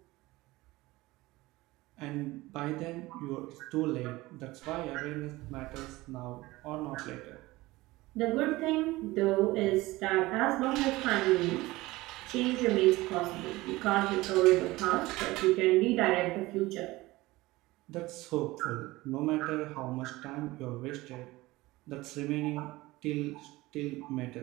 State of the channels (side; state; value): left; quieter; 19.6 dB